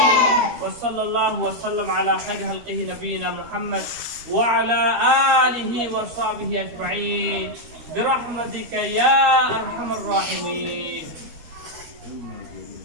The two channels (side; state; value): left; late; 13 ms